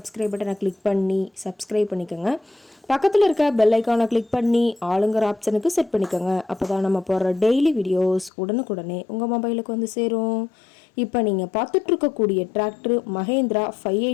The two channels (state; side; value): drops out; right; at 8.3 s